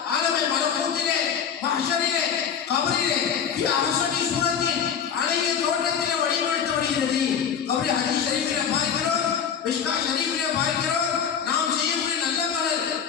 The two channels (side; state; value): right; quieter; 7.6 dB